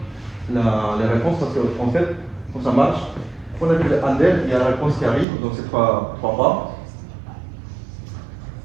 les réponses parce qu'en fait, quand ça marche, on a vu le handle, il y a la réponse qui arrive, donc c'est trois pas.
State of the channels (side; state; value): left; drops out; at 5.2 s